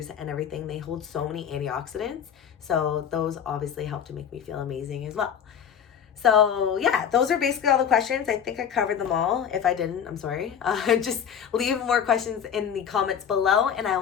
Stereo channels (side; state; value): right; quieter; 8.2 dB